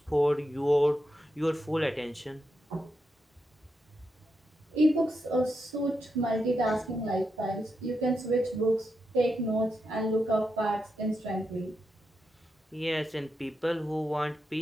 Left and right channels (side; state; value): both; normal; correlation 0.85